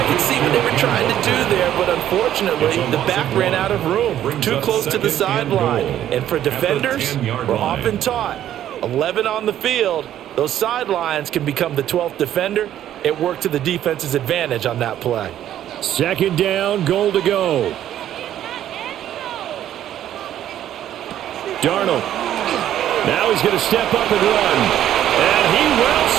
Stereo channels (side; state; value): left; quieter; 11.5 dB